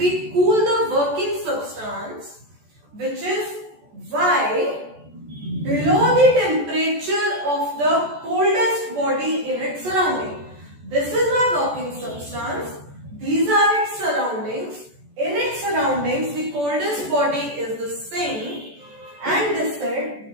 cool the working substance, which is Y, below the temperature of the coldest body in its surrounding. This is my working substance. These are its surroundings. In its surroundings, the coldest body is the sink, and they said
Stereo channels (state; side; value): late; left; 14 ms